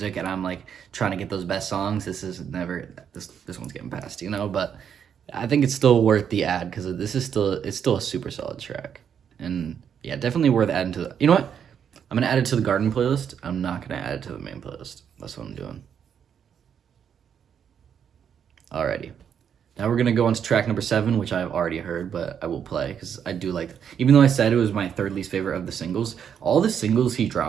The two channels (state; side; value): quieter; left; 8.1 dB